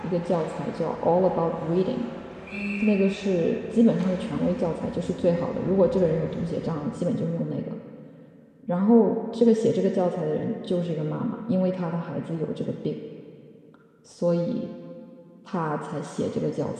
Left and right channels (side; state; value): both; identical; correlation 1.00